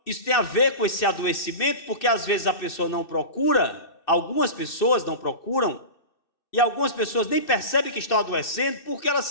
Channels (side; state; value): right; late; 2.6 ms